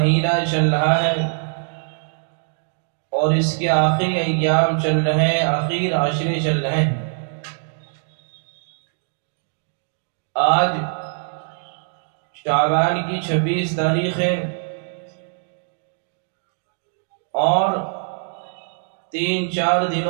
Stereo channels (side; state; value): left; silent; digital silence